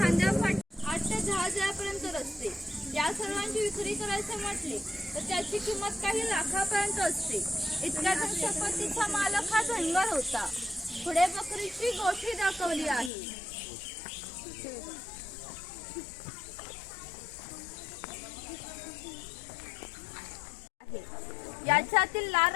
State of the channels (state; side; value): drops out; right; at 13.1 s